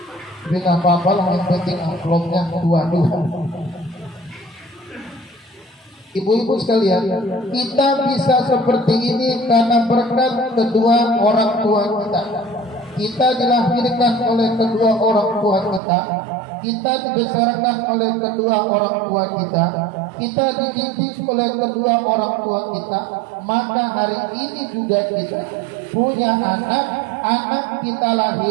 Tapi nggak apa-apa lah, yang penting amplopnya dua-dua. Ibu-ibu sekalian, kita bisa seperti ini karena berkat kedua orang tua kita. Kita dilahirkan oleh kedua orang tua kita. Kita dibesarkan oleh kedua orang tua kita dididik oleh kedua orang tua kita. Maka hari ini juga kita punya anak kita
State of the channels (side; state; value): left; drops out; at 15.8 s